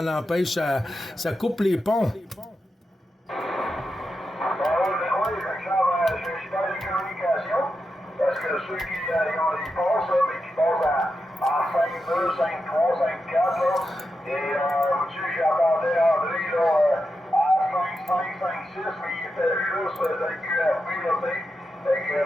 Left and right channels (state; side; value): normal; both; correlation 0.88